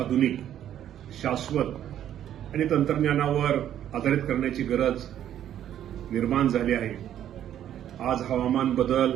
शाश्वत आणि तंत्रज्ञानावर आधारित करण्याची गरज निर्माण झाली आहे. आज हवामान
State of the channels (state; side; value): quieter; left; 10.8 dB